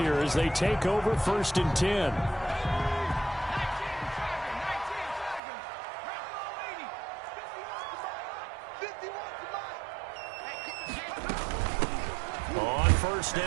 as they take over 1st and 10. On 1st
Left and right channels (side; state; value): left; drops out; at 5.4 s